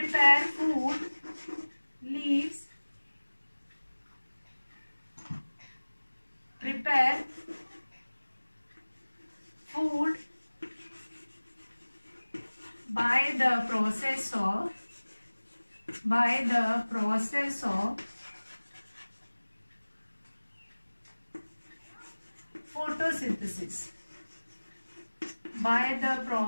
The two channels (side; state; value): both; inverted; correlation -1.00